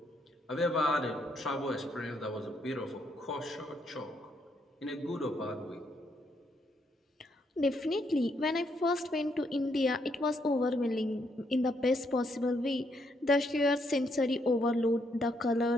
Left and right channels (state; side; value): normal; both; correlation 0.74